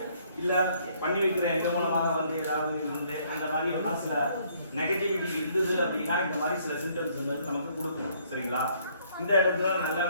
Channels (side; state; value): both; inverted; correlation -0.65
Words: இல்ல பண்ணி வைக்கிற எங்க மூலமாக வந்து ஏதாவது இருந்து அந்த மாதிரி எல்லாம் சில நெகட்டிவிட்டி இருந்தது அப்படின்னா இந்த மாதிரி சில சிம்டம்ஸ் வந்து நமக்கு கொடுக்கும். சரிங்களா? இந்த இடத்துல நல்ல